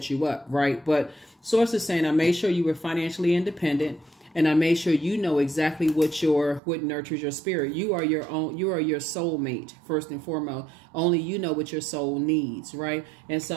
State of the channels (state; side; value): drops out; left; at 6.6 s